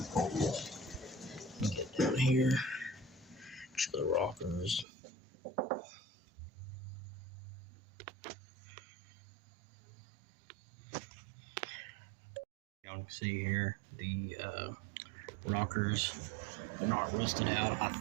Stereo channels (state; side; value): drops out; left; at 4.9 s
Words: Get down here. Show the rockers. Y'all can see here the rockers are not rusted out. I